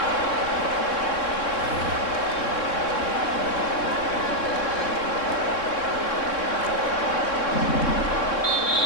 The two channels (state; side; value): late; right; 3.6 ms